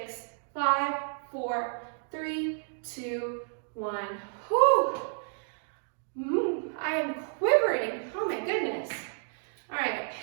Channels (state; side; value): silent; left; digital silence